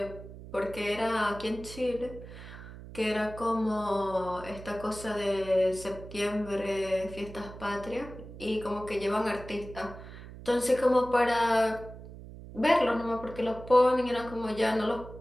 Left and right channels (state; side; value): noise; right; hum, 14 dB below the sound